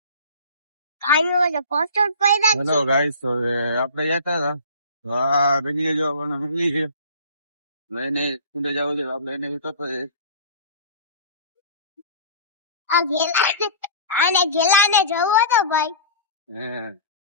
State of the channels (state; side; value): inverted; both; correlation -0.40